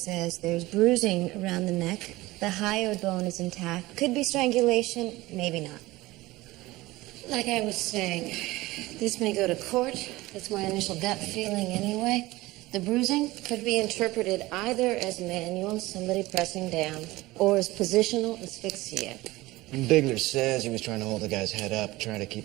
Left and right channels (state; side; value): quieter; left; 19.2 dB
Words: there's bruising around the neck. The hyoid bone is intact. Could be strangulation, maybe not. Like I was saying, this may go to court. That's my initial gut feeling anyway. The bruising could be interpreted either as manual, somebody pressing down, or as positional asphyxia. And Bigler says he was trying to hold the guy's head up, trying to keep